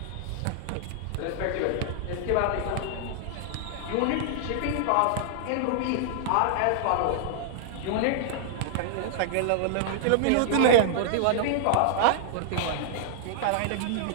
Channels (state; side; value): different; both; correlation -0.01